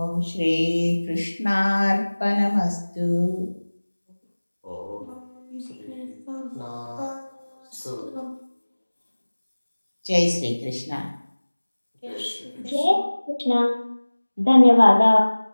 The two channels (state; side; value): inverted; both; correlation -1.00